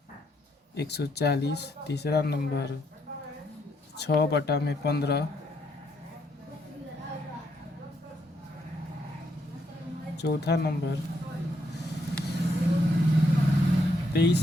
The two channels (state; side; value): normal; both; correlation 0.74